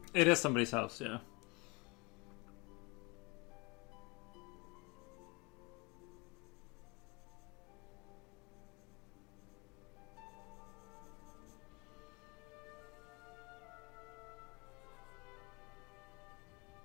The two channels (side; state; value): right; quieter; 28.3 dB